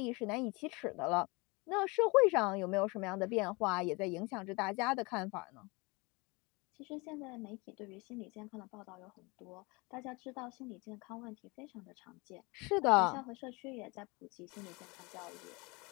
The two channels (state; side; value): quieter; right; 26.6 dB